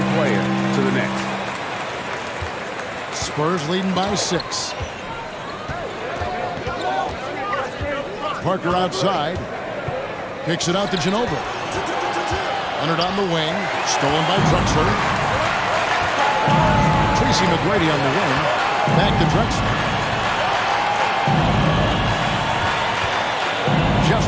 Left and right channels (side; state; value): both; identical; correlation 1.00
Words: player to the next. Spurs leading by 6. Parker outside. Kicks it out to Ginobili. Leonard on the wing. Stolen by Drexler. Tracy McGrady on the wing. Back to Drexler.